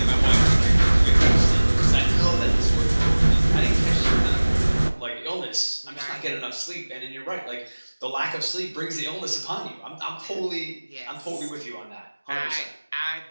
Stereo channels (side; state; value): both; inverted; correlation -1.00